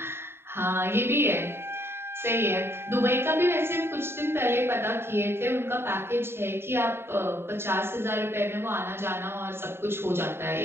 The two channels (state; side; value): late; left; 0.11 ms